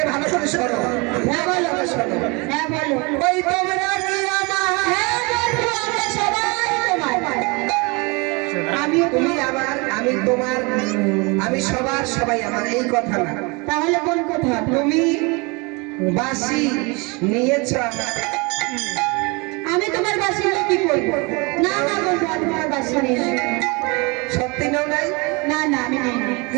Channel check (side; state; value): left; quieter; 28.4 dB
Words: ভালো করে শোনো। হ্যাঁ বলো। শোনো, হ্যাঁ বলো। ওই তোমরা কি আমার? হ্যাঁ বন্ধু, আমরা সবাই তোমার। তুমি আমার, আমি তোমার, আমি সবার, সবাই আমার, এই কথা না। তাহলে কোন কথা? তুমি বাসি নিয়েছ আমার। আমি তোমার বাসি নিয়ে কি করবো? না না বন্ধু, আমি তোমার বাসি নিয়ে। সত্যি নাও নাই? না না, আমি নেই।